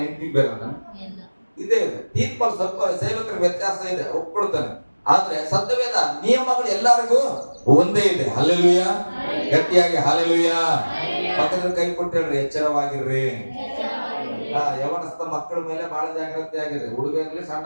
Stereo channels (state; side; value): inverted; both; correlation -1.00